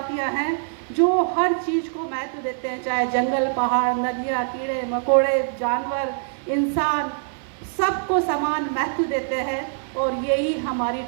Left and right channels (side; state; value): left; silent; digital silence